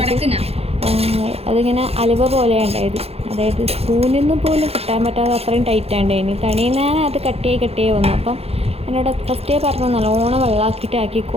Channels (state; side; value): late; left; 0.29 ms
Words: അതിങ്ങനെ അലുവ പോലെ ഉണ്ടായത്. അതായത് സ്പൂണിൽ നിന്ന് പോലും കിട്ടാൻ പറ്റാതെ അത്രയും ടൈറ്റാണ്ടായിന്. തണിയിൽ ഞാൻ അത് കട്ടിയായി വന്നു. അപ്പം എന്നോട് ഫസ്റ്റേ പറഞ്ഞു നല്ലോണം വെള്ളമാക്കിയിട്ട്